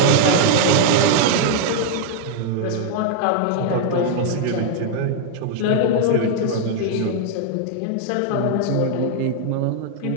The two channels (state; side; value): different; both; correlation 0.00